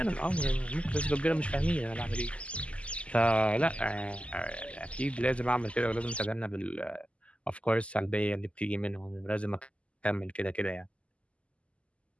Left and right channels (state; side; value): late; right; 0.060 ms